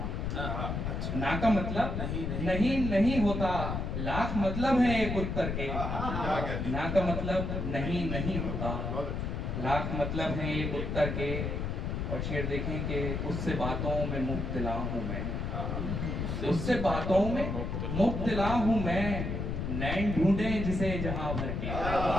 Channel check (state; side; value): noise; left; rumble, 2 dB below the sound